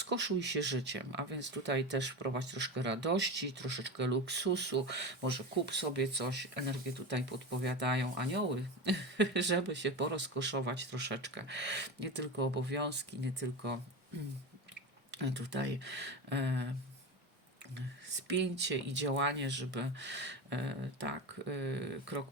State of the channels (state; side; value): normal; both; correlation 0.23